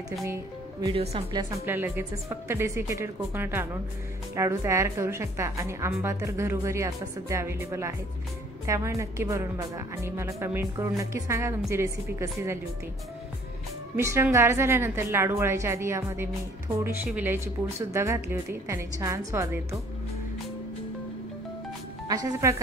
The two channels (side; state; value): both; normal; correlation 0.57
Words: तुम्ही व्हिडिओ संपल्या लगेचच फक्त डेसिकेटेड कोकोनट आणून लाडू तयार करू शकता आणि आंबा तर घरोघरी आता सध्या अवेलेबल आहेत, त्यामुळे नक्की बनवून बघा आणि मला कमेंट करून नक्की सांगा तुमची रेसिपी कशी झाली होती। मिश्रण गार झाल्यानंतर लाडू वळायच्या आधी यामध्ये मी थोडीशी विलायची पूड सुद्धा घातली होती, त्याने छान स्वाद येतो। अशाच